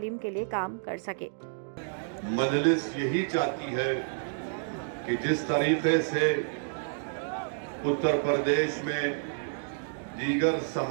के लिए काम कर सके। मजलिस यही चाहती है कि जिस तरीके से उत्तर प्रदेश में दीगर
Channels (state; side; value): silent; left; digital silence